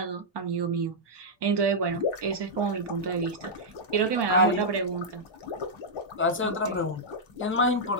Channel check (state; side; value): normal; both; correlation -0.08